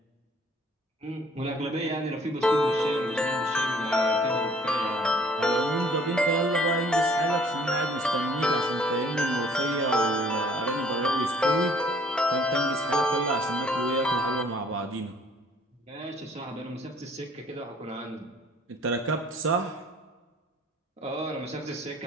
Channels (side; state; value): both; normal; correlation 0.57